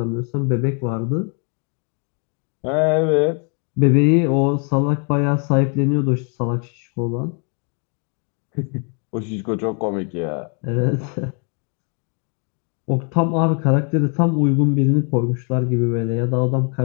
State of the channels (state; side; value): quieter; right; 38.6 dB